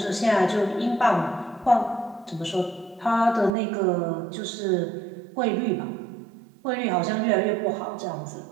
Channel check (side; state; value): left; drops out; at 3.6 s